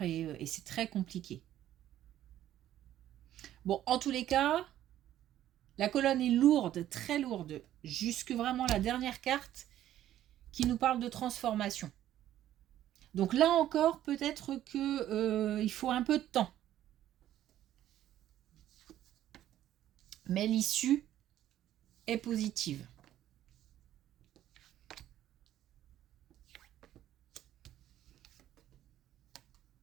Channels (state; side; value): quieter; left; 12.4 dB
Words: et c'est très compliqué. Bon, en tous les cas, la colonne est lourde, très lourde, jusque vraiment la dernière carte qui nous parle de transformation. Donc là encore, peut-être que il faut un peu de temps. Mais l'issue est positive.